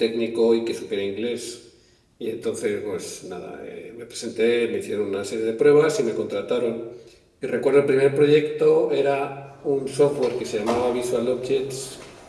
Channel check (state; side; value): identical; both; correlation 1.00